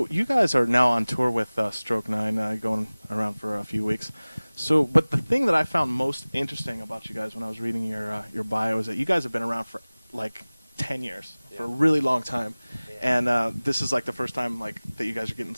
you guys are now on tour with Stroke 9, going around for a few weeks. So, but the thing that I found most interesting about you guys when I was reading your bio is that you guys have been around for like 10 years, for a really long time. Yeah. And this is like the first time like that you guys are getting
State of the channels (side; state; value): both; inverted; correlation -0.99